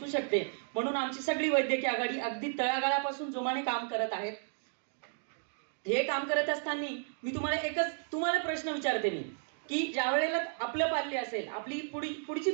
शकते. म्हणून आमची सगळी वैद्यकीय आघाडी अगदी तळागाळापासून जोमाने काम करत आहेत. हे काम करत असताना मी तुम्हाला प्रश्न विचारते मी की ज्या वेळेला आपलं पाल्य असेल, आपली पुढची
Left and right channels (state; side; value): silent; left; digital silence